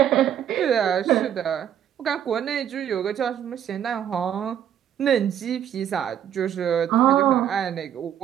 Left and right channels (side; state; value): left; quieter; 9.9 dB